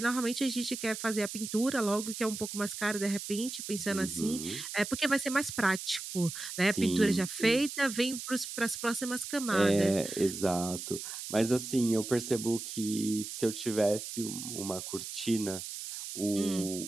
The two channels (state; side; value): noise; right; hiss, 8 dB below the sound